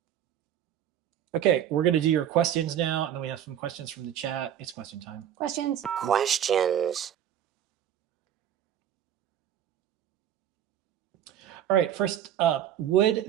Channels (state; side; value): quieter; left; 10.2 dB